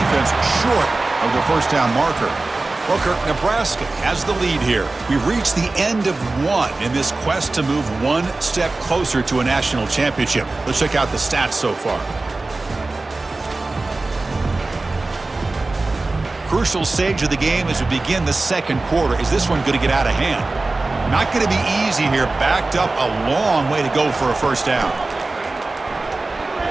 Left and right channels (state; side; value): quieter; left; 3.3 dB